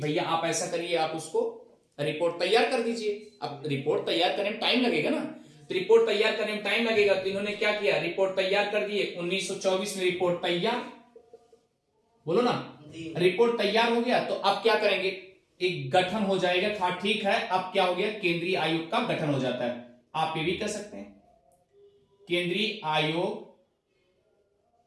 आप ऐसा करिए, आप उसको रिपोर्ट तैयार कर दीजिए। अब रिपोर्ट तैयार करने में टाइम लगेगा ना, तो रिपोर्ट तैयार करने में टाइम लगेगा, तो इन्होंने क्या किया, रिपोर्ट तैयार कर दिए। 1924 में रिपोर्ट तैयार, बोलो ना, रिपोर्ट तैयार हो गया, तो अब क्या करेंगे, एक गठन हो जाएगा। हाँ ठीक है, अब क्या हो गया, केंद्रीय आयोग का गठन हो जाता है। आप ये भी कह सकते हैं केंद्रीय आयोग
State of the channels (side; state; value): both; identical; correlation 1.00